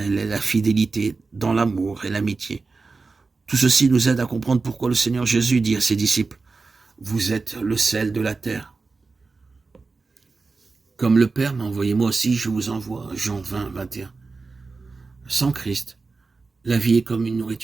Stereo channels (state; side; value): quieter; left; 4.1 dB